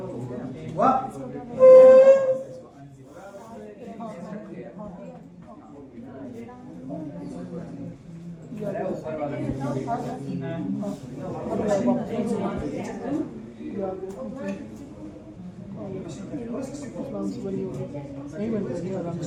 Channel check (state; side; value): identical; both; correlation 1.00